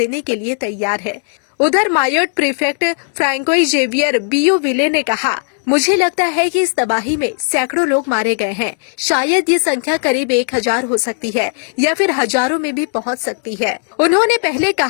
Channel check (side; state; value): right; silent; 58 dB below the other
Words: के लिए तैयार है। उधर मायोट प्रीफेक्ट फ्रैंकोइस जेवियर बियोविले ने कहा, मुझे लगता है कि इस तबाही में सैकड़ों लोग मारे गए हैं। शायद ये संख्या करीब 1000 हो सकती है या फिर हजारों में भी पहुंच सकती है। उन्होंने पहले